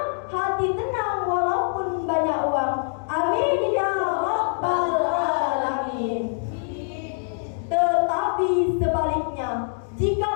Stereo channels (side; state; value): right; silent; digital silence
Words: hati tenang walaupun banyak uang. Amin ya rabbal alamin. Tetapi sebaliknya, jika